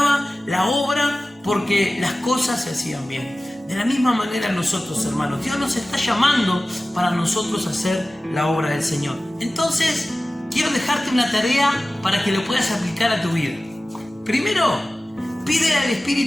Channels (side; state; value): both; normal; correlation 0.96